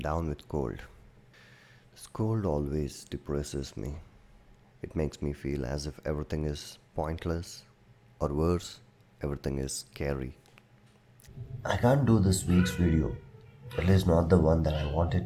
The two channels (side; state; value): both; identical; correlation 1.00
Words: with cold. This cold always depresses me. It makes me feel as if everything is pointless, or worse, everything is scary. I can't do this week's video, at least not the one that I